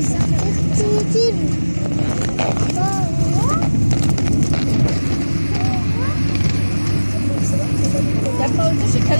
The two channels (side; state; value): both; inverted; correlation -1.00